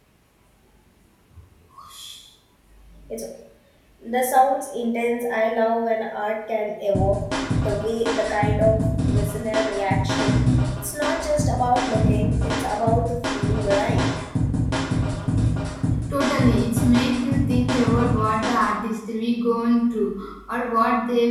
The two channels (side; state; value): both; identical; correlation 1.00